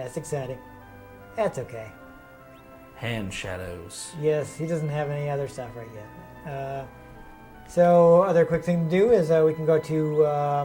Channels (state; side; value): identical; both; correlation 1.00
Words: exciting. That's okay. Hand shadows. Yes, he doesn't have any other stuff right yet. So other quick thing to do is we can go to,